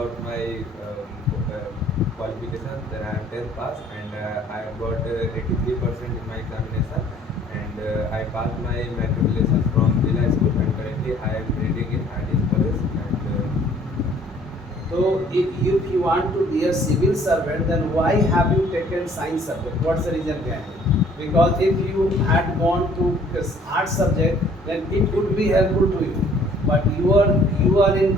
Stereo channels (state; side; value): normal; both; correlation 0.57